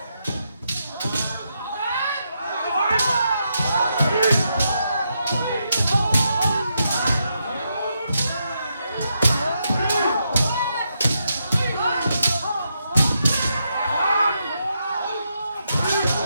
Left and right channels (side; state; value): both; inverted; correlation -0.82